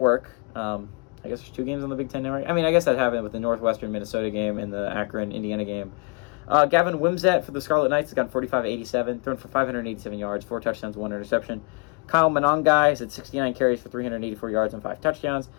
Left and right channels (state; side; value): quieter; right; 31.2 dB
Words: I guess there's 2 games on the Big Ten Network. I mean, I guess that happened with the Northwestern Minnesota game and the Akron Indiana game. Gavin Wimsatt for the Scarlet Knights has gone 45-87, thrown for 587 yards, 4 touchdowns, 1 interception. Kyle Monangai has had 69 carries for 384 yards and 5 touchdowns.